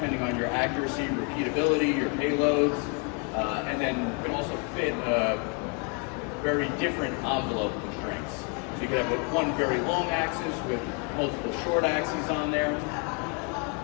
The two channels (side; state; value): right; quieter; 34.0 dB